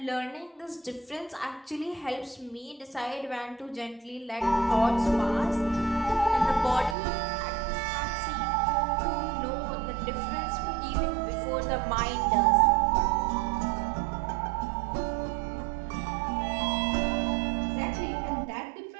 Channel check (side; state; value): left; drops out; at 7.0 s